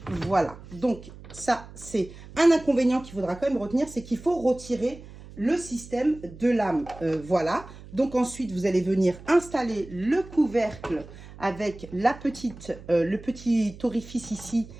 Voilà. Donc, ça, c'est un inconvénient qu'il faudra quand même retenir, c'est qu'il faut retirer le système de lame. Voilà. Donc, ensuite, vous allez venir installer le couvercle avec le petit orifice ici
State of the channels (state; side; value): noise; right; hum, 17 dB below the sound